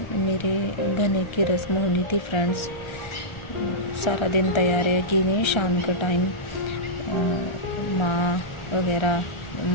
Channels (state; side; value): late; right; 1.3 ms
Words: मेरे घने की रस्म होनी थी फ्रेंड्स, सारा दिन तैयारियां की गई। शाम का टाइम